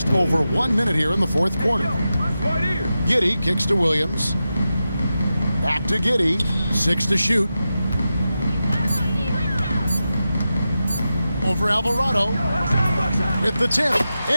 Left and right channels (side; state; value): both; inverted; correlation -0.91